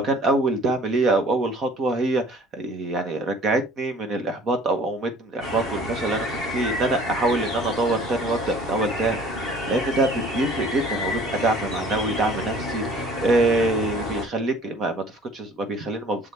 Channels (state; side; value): normal; both; correlation 0.51